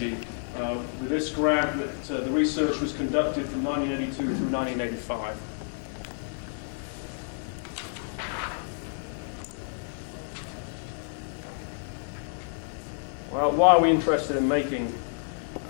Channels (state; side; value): silent; right; digital silence